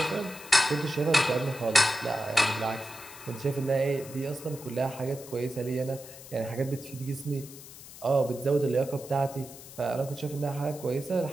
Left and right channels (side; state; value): left; noise; hiss, 16 dB below the sound